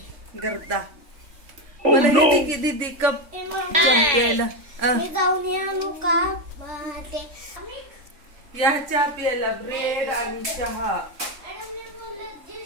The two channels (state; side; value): late; left; 3.5 ms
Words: गर्दा. मला येते की दीदी कप प्यायला. मी जाऊन आणू का ते? या चहा प्यायला. ब्रेड आणि चहा.